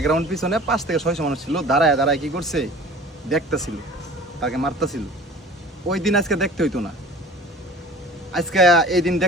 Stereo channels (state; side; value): normal; both; correlation 0.43